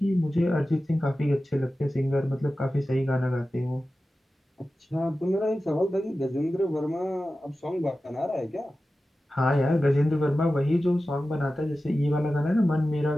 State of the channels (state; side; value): normal; both; correlation 0.94